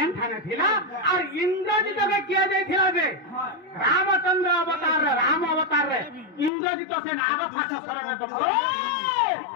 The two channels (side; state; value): right; drops out; at 6.5 s